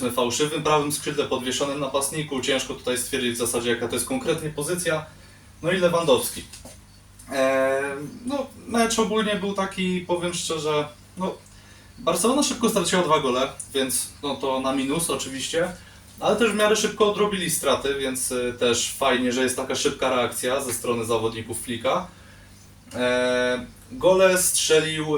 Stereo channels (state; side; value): identical; both; correlation 1.00